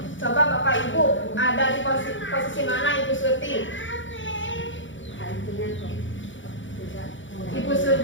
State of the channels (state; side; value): late; right; 0.56 ms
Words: coba Bapak Ibu ada di posisi mana Ibu Surti? Ibu